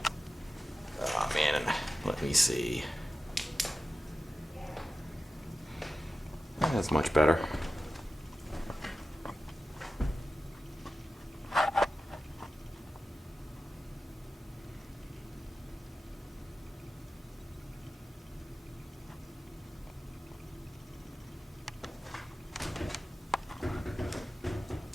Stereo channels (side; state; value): both; normal; correlation 0.93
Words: Oh man, let me see. That's much better.